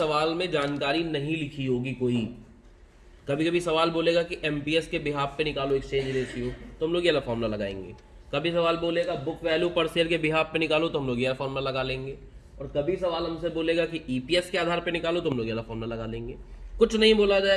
में जानकारी नहीं लिखी होगी कोई, कभी कभी सवाल बोलेगा कि एमपीएस के बिहाफ पे निकालो एक्सचेंज रेशियो, तो हम लोग ये वाला फॉर्मूला लगाएंगे। कभी सवाल बोलेगा बुक वैल्यू पर शेयर के बिहाफ पे निकालो, तो हम लोग ये फॉर्मूला लगा लेंगे। और कभी सवाल हमसे बोलेगा कि ईपीएस के आधार पे निकालो, तो हम लोग ये वाला फॉर्मूला लगा लेंगे। कुछ नहीं बोला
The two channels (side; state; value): both; identical; correlation 1.00